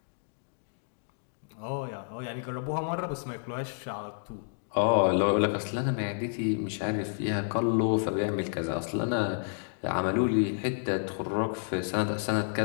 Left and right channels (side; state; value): right; silent; digital silence